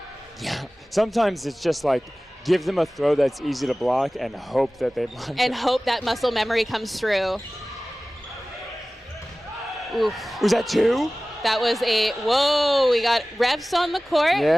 Yeah, sometimes it's just like give them a throw that's easy to block and hope that they block. And hope that muscle memory comes through. Oof. Was that 2? That was whoa, we got refs on the court.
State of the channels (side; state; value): both; normal; correlation 0.97